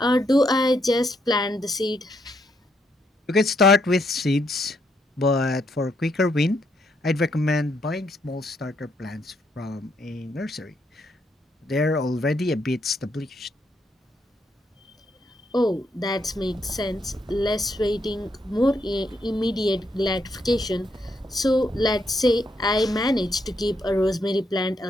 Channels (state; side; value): normal; both; correlation 0.76